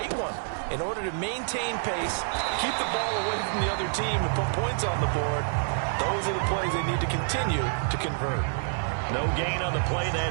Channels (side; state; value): left; silent; 60 dB below the other